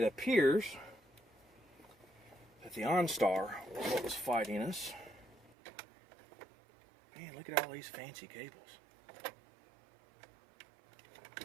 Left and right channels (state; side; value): drops out; left; at 5.6 s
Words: appears that the OnStar was what was fighting us. Man, look at all these fancy cables.